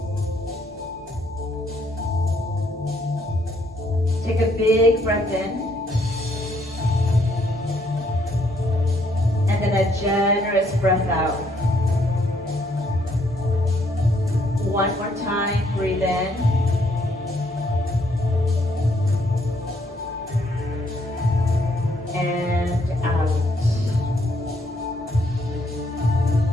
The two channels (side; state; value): both; normal; correlation 0.70